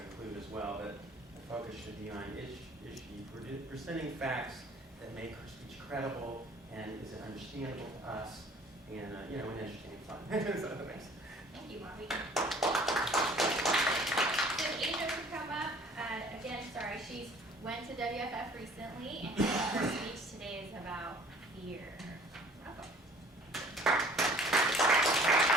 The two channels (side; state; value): both; normal; correlation 0.52